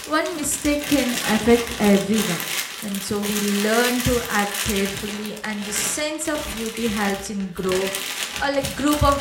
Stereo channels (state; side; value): identical; both; correlation 1.00